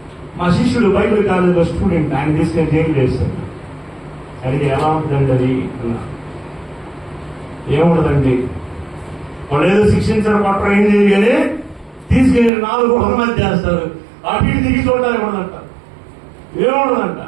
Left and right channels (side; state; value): left; drops out; at 12.5 s